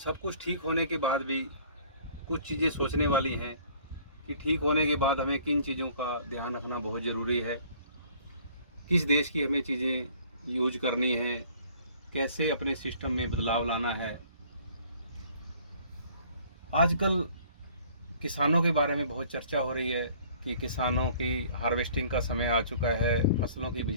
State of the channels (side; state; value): both; inverted; correlation -0.55